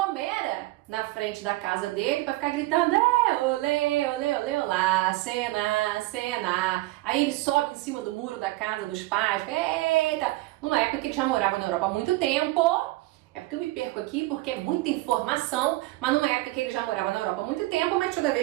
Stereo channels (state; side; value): quieter; left; 19.3 dB